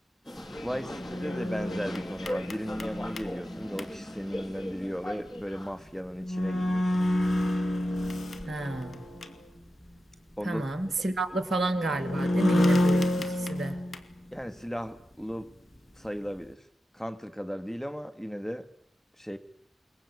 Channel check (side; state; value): both; normal; correlation 0.92